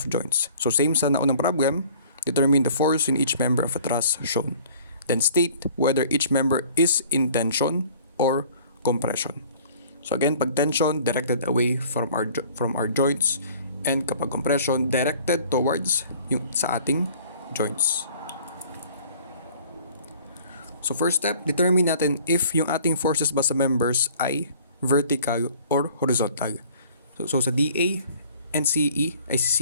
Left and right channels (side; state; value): both; inverted; correlation -0.52